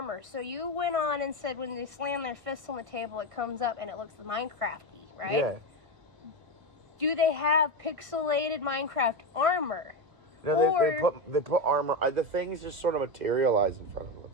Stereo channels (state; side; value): late; left; 1.5 ms